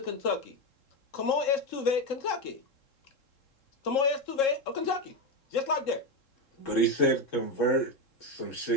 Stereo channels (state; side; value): late; right; 3.7 ms